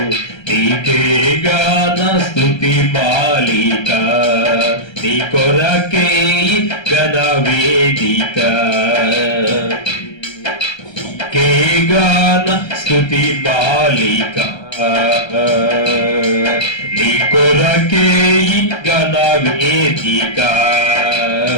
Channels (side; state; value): right; late; 1.3 ms